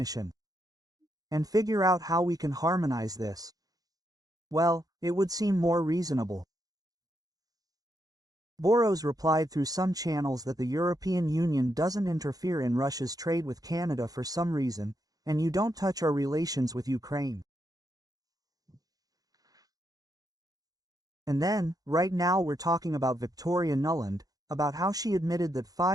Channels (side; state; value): left; late; 0.18 ms